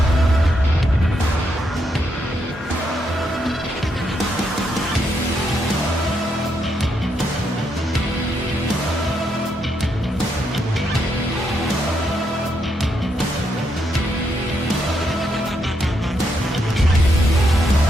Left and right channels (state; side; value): normal; both; correlation 0.78